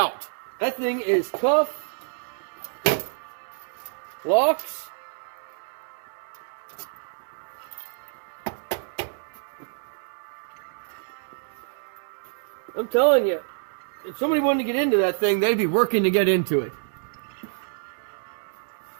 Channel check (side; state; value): left; silent; digital silence